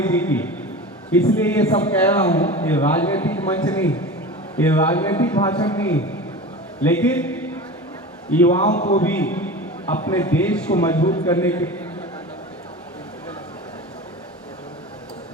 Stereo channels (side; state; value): both; normal; correlation 0.32